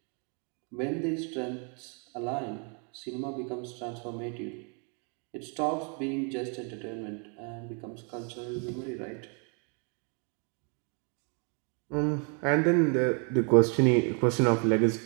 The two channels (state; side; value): quieter; left; 38.3 dB